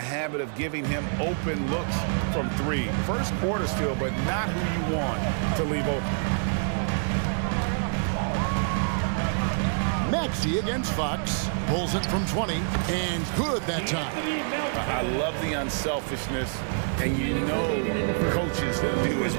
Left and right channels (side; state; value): left; silent; digital silence